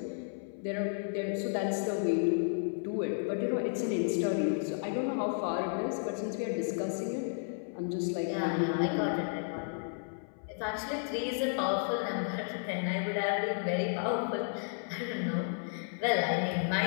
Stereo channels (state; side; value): silent; right; 56 dB below the other